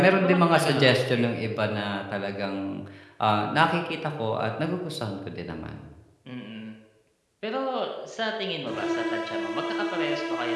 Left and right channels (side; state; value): both; identical; correlation 1.00